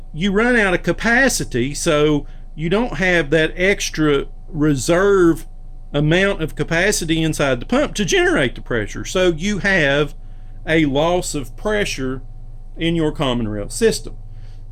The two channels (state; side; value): identical; both; correlation 1.00